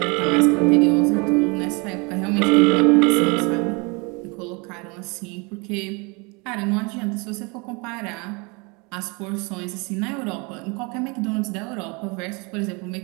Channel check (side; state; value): left; quieter; 29.9 dB